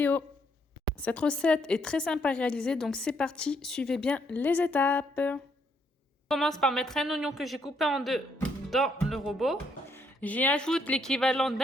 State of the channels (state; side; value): normal; both; correlation 0.72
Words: Cette recette est très simple à réaliser, donc c'est parti, suivez bien les étapes. Je commence par mettre un oignon que j'ai coupé en deux dans le robot. J'y ajoute l'équivalent